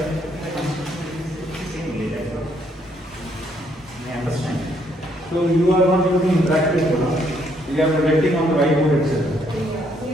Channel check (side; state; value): both; normal; correlation 0.70